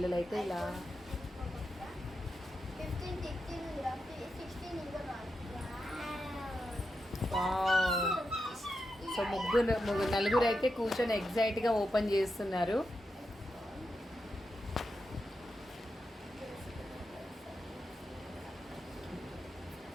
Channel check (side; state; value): both; normal; correlation 0.87